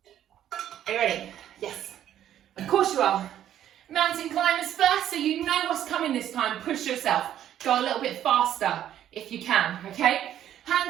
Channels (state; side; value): quieter; left; 11.1 dB